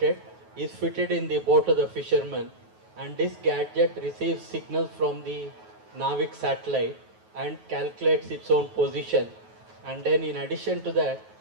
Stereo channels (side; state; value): left; late; 9.3 ms